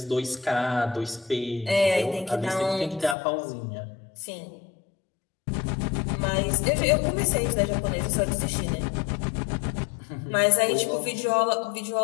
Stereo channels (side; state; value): right; drops out; at 3.2 s